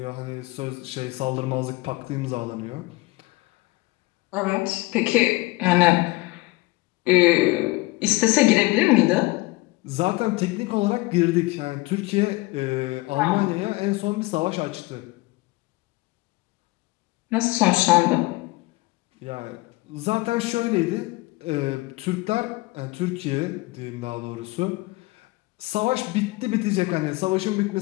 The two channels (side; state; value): right; quieter; 21.9 dB